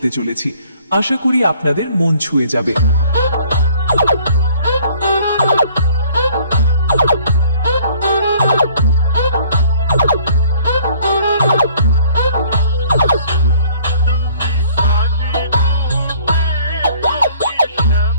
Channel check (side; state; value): both; inverted; correlation -0.55